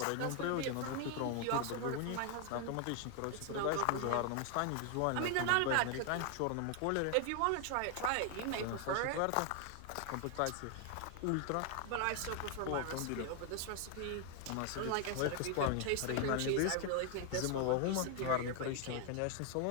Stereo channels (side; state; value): both; different; correlation 0.00